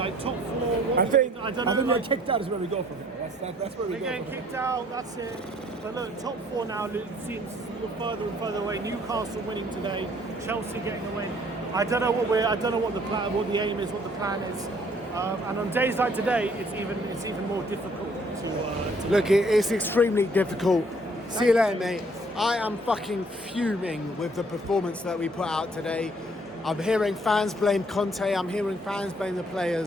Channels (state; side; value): normal; both; correlation 0.61